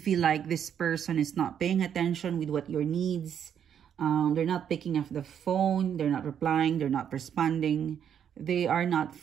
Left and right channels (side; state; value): left; quieter; 8.7 dB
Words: like this person is not paying attention with what your needs. They're not picking up the phone. They're not replying. They're not responding. They are not